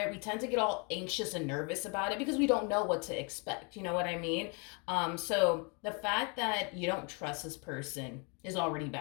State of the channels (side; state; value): right; quieter; 34.0 dB